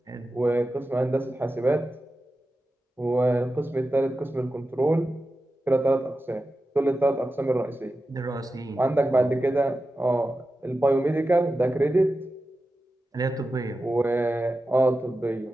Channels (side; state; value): both; normal; correlation 0.92